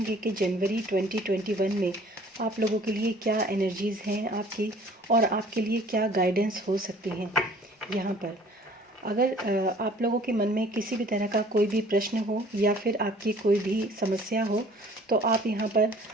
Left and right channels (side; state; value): both; normal; correlation 0.52